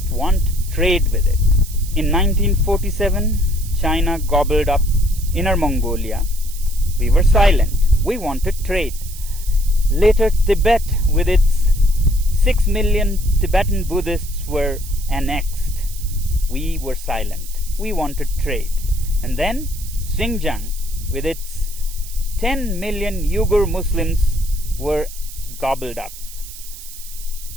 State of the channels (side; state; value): right; noise; hiss, 15 dB below the sound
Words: want trade with it. In 1947, China gobbled up Inner Mongolia. We were silent. We wanted trade. Later, Tibet, with its 6 million Tibetan Buddhists, were annexed. We were silent. We wanted trade. And then Xinjiang, with its 10 million Uyghur Muslims, were gobbled up.